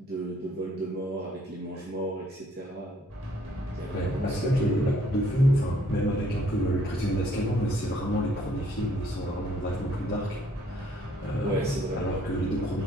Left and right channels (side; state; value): both; normal; correlation 0.64